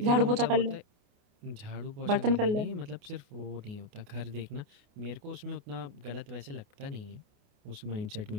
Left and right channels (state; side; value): late; left; 29 ms